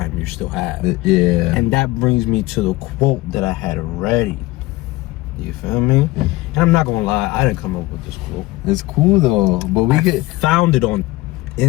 you still have. Yeah. And that brings me to the quote that I had ready. You feel me? And I'm not gonna lie, I didn't come up with this quote. It's cool though, but I found it in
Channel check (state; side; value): quieter; right; 19.6 dB